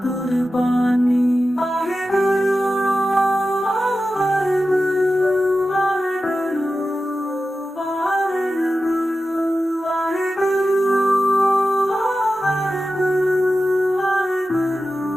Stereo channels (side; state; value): both; normal; correlation 0.93